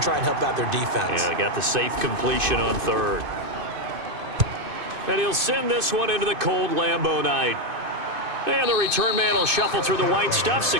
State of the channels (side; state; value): left; late; 2.6 ms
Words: and help out their defense. Yeah, they got the safe completion on 3rd. And he'll send this one into the cold Lambeau night. And the return man will shuffle through the white stuff,